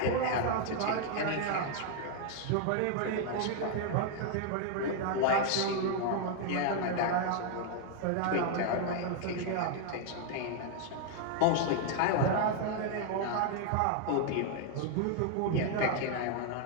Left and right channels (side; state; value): both; different; correlation 0.00